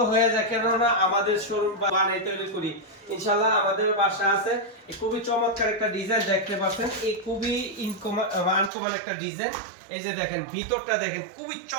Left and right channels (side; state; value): left; drops out; at 8.7 s